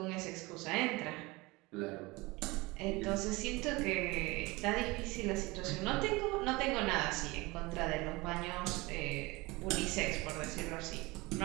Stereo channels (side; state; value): left; quieter; 23.1 dB